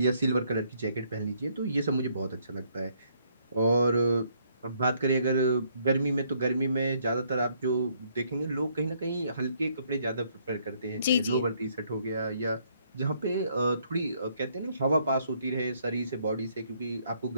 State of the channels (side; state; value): both; inverted; correlation -0.69